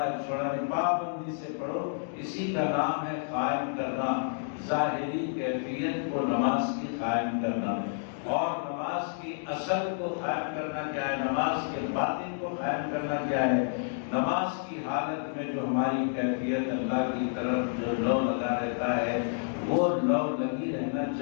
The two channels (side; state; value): right; silent; digital silence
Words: ایک چھوڑا نہیں، پابندی سے پڑھو، اسی کا نام ہے قائم کرنا۔ ظاہری کیفیت کو نماز کی قائم کرنا، اور نماز کی اصل کو قائم کرنا کیا ہے، نماز کے باطن کو قائم کرنا کیا ہے۔ نماز کی حالت میں جو ہماری کیفیت اللہ کی طرف جو لو لگا رہتا ہے وہ لو لگی رہنا